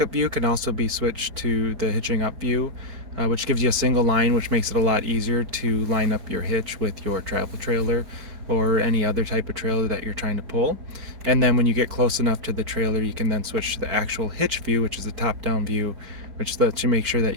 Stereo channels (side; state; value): left; late; 4.6 ms